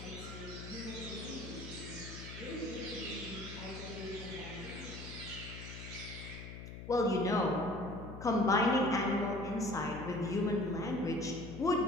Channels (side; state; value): left; noise; hum, 10 dB below the sound